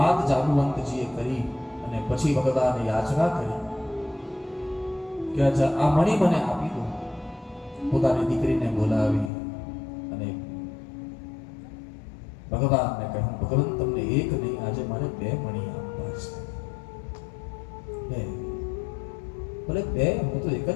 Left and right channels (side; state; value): right; drops out; at 9.3 s